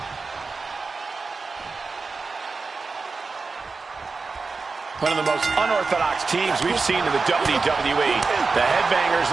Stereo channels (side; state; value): left; quieter; 4.3 dB